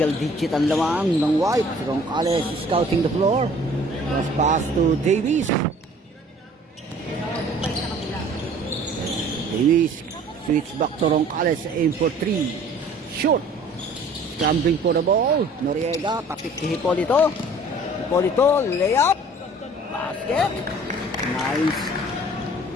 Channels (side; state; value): both; normal; correlation 0.51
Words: digit ang lamang ng White. Roncales is scouting the floor. Cross pass to Davis. Davis switch back to Roncales. Aim for 3. Shoot. Scrambling for the ball. Noriega tapit kay Hipolito. Hipolito layup. Basket. Nice.